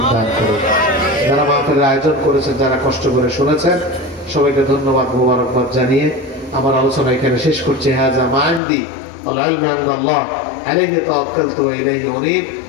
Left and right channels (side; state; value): right; drops out; at 8.6 s